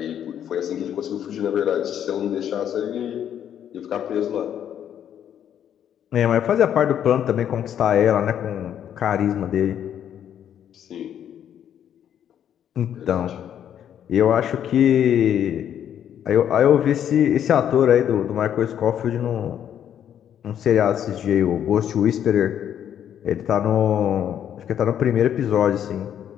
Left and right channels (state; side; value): quieter; right; 9.7 dB